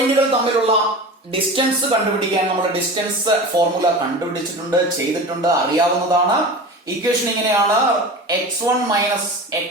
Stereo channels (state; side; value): normal; both; correlation 0.32